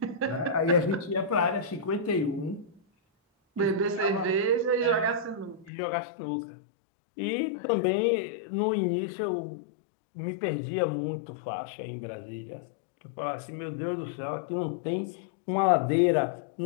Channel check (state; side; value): drops out; right; at 5.7 s